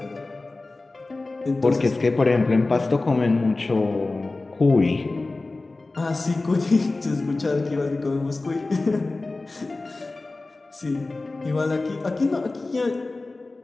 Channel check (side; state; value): right; quieter; 3.3 dB